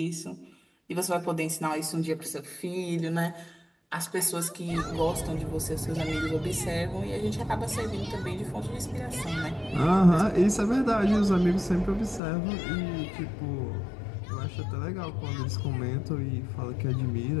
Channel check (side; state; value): right; drops out; at 12.2 s